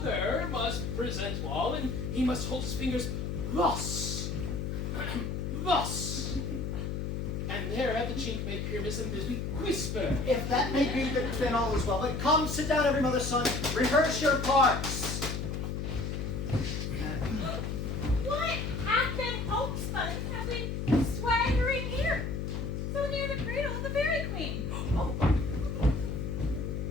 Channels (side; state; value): left; noise; hum, 3 dB below the sound